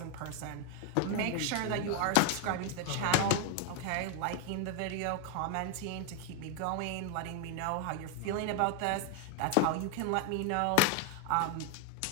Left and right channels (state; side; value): different; both; correlation 0.00